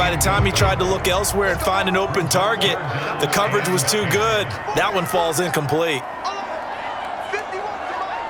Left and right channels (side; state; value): both; identical; correlation 1.00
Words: the time he tried to look elsewhere and find an open target, the coverage was too good. That one falls incomplete.